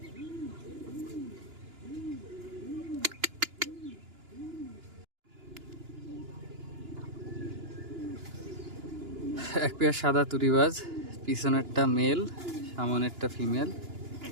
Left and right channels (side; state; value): left; late; 2.9 ms